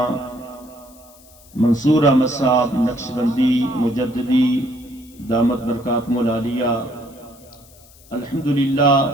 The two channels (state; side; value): noise; left; hiss, 25 dB below the sound